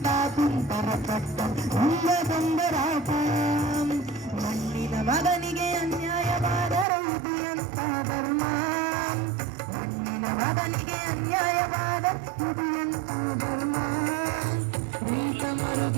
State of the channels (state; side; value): drops out; left; at 6.9 s